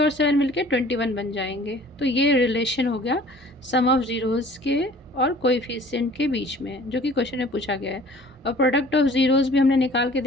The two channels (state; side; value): normal; both; correlation 0.50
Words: 7 मिलके 21 बन जाएंगे। तो ये रिलेशन हो गया सम ऑफ ज़ीरोज़ के और कोएफिशिएंट के बीच में, जो कि क्वेश्चन में पूछा गया है। और प्रोडक्ट ऑफ ज़ीरोज़ भी हमने निकाल के